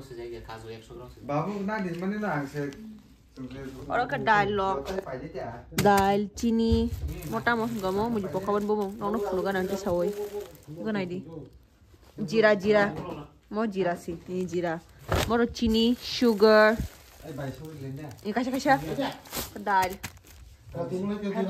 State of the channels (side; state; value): both; identical; correlation 1.00